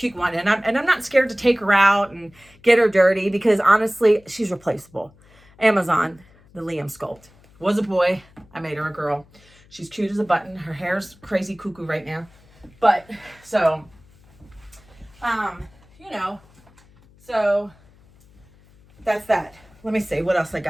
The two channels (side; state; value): left; noise; hum, 28 dB below the sound